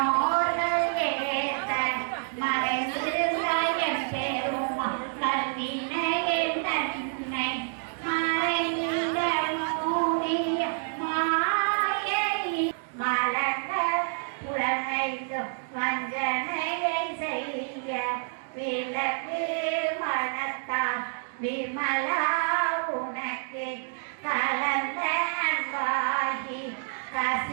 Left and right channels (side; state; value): left; silent; digital silence